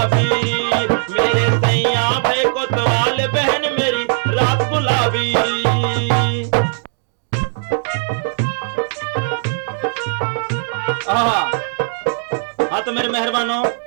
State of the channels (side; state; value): left; silent; digital silence